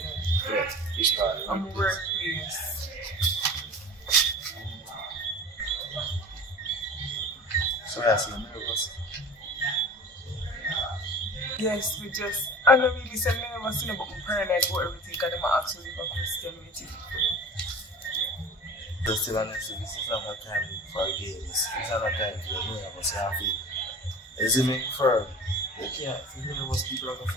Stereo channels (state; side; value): normal; both; correlation 0.37